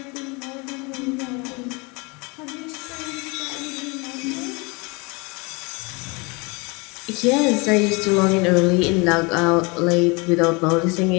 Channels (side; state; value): right; quieter; 28.4 dB